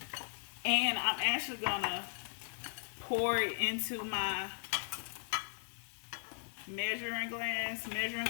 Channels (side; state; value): right; silent; 53 dB below the other